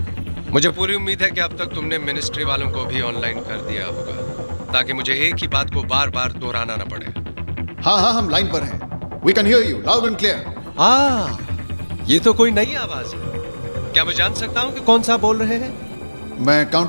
मुझे पूरी उम्मीद है कि अब तक तुमने मिनिस्ट्री वालों को भी ऑनलाइन कर दिया होगा, ताकि मुझे एक ही बात को बार बार दोहराना ना पड़े। हाँ, हम लाइन पर हैं। We can hear you loud and clear. ये तो कोई नई आवाज है। क्या मैं जान सकता हूँ कि कौन सा बोल रहे हैं? मैं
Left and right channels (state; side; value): inverted; both; correlation -1.00